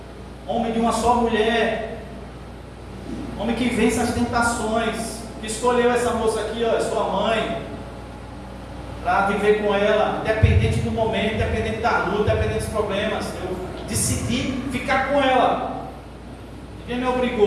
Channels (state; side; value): identical; both; correlation 1.00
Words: homem de uma só mulher, homem que vence as tentações, que escolheu essa moça aqui, ó, sua mãe, para viver com ela, independente do momento, independente da luta, independente dos problemas. Eu decidi ficar com ela. Ninguém me